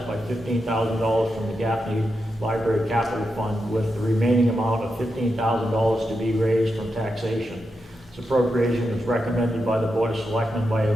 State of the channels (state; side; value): normal; both; correlation 0.87